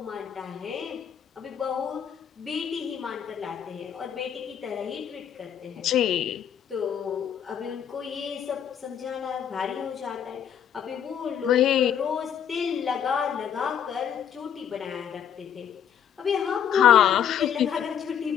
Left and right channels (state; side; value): quieter; right; 8.9 dB